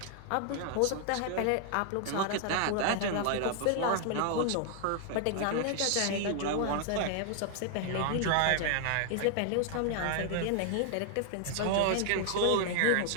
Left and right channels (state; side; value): different; both; correlation 0.00